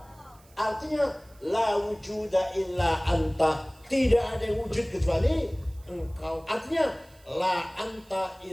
Artinya la wujuda illa anta. Tidak ada yang wujud kecuali engkau. Artinya la anta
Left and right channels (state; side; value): noise; right; hiss, 29 dB below the sound